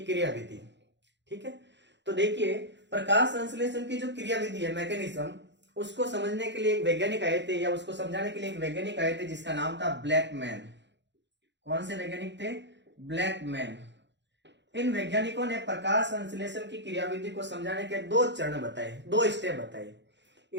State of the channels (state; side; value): late; left; 0.52 ms